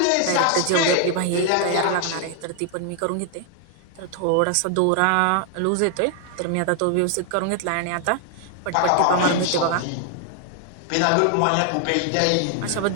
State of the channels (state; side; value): different; both; correlation 0.00